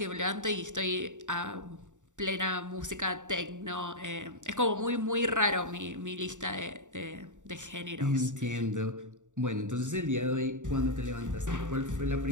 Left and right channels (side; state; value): left; late; 0.86 ms